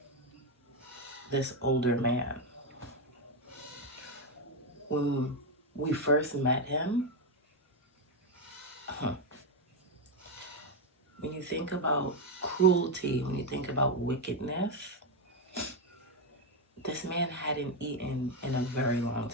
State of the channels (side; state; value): both; normal; correlation 0.06